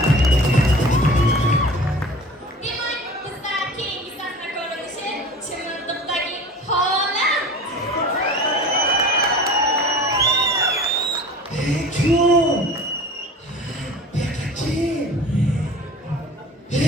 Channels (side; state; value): both; normal; correlation 0.40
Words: Demak, bizda keyingi sahna ko'rinishi Chimildiqdagi holat.